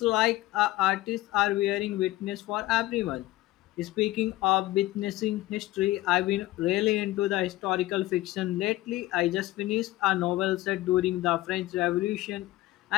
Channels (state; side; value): quieter; right; 17.3 dB